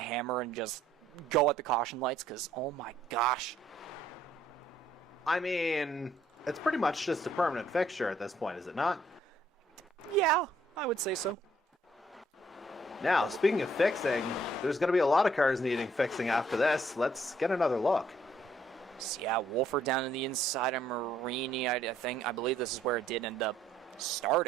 and just go at the caution lights, because, oh my gosh. I mean, it's pretty much just a permanent fixture at this point, is it not? Yeah, I would say so. Now, speaking of fixing, there's going to be a lot of cars needing fixing after this. Let's get another look. So yeah, Wolford down in the inside of Marini. I believe this is where it did end up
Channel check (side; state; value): both; normal; correlation 0.66